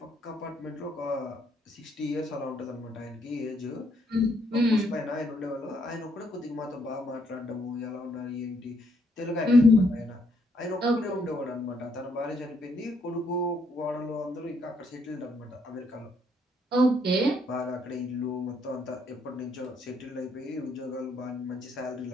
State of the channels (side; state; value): both; normal; correlation 0.71